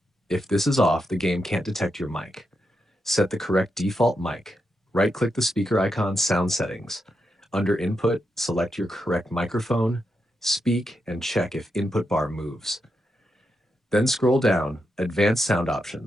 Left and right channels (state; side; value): normal; both; correlation 0.85